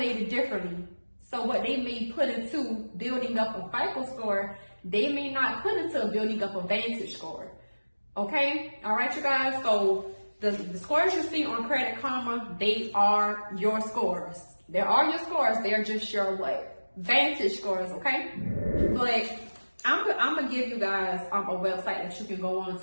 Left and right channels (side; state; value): both; inverted; correlation -1.00